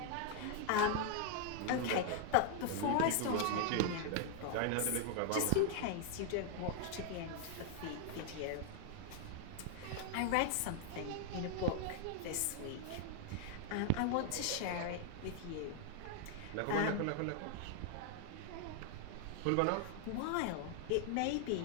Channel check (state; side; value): different; both; correlation 0.00